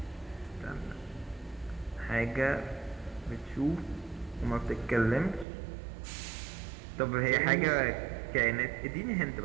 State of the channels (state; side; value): drops out; left; at 5.5 s